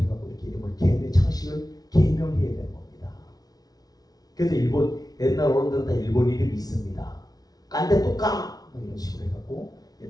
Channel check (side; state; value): right; late; 0.19 ms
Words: 이렇게 이름을 창식을 개명해야 되는 겁니다. 그래서 일본 옛날 어른들은 다 일본 이름이 있습니다. 깐데 또까 뭐 이런 식으로 해갖고